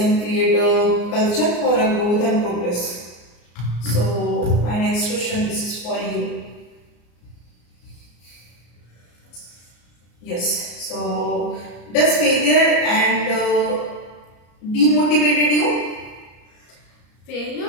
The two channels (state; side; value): late; right; 34 ms